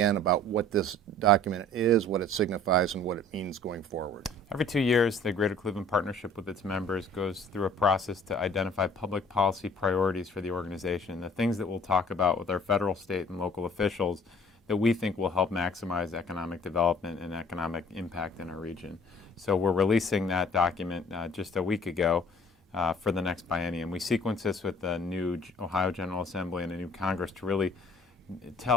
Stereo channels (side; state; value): both; normal; correlation 0.52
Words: about what this document is, what it signifies, and what it means going forward. Every 2 years, the Greater Cleveland Partnership with its members goes through a process to identify public policy priorities for the organization, the things that we'll talk about with our federal, state, and local officials that we think will help maximize economic development and economic impact in our region. So we're releasing that document just a week ago for the next biennium. We sequence this with the new Ohio General Assembly and a new Congress to really